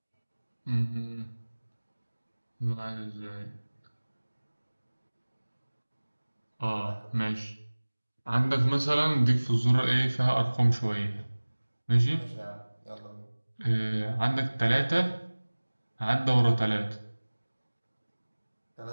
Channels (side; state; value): both; inverted; correlation -1.00